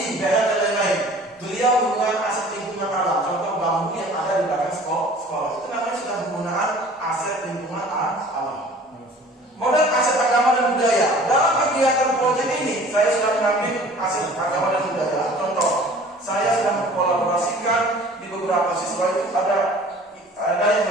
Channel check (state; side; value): normal; both; correlation 0.48